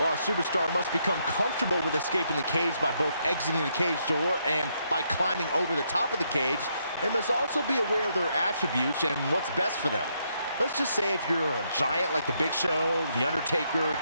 a superstar must become comfortable with escaping the cage by both exiting the cage door and by climbing over the top of the cage. They must also be aware of their attributes and what's best for them. Let's just say if you're a giant like The Big Show, The Undertaker,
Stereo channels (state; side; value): inverted; both; correlation -0.76